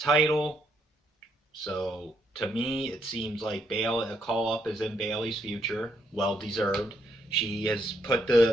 So to me, it seems like Bailey, a call up is in Bailey's future. Well deserved. She has put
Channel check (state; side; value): normal; both; correlation 0.74